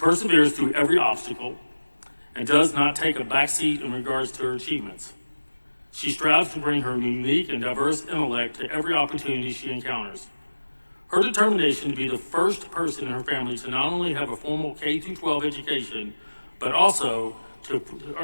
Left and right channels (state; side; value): inverted; both; correlation -1.00